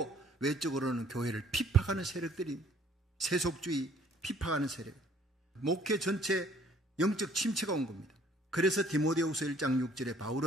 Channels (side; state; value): both; normal; correlation 0.58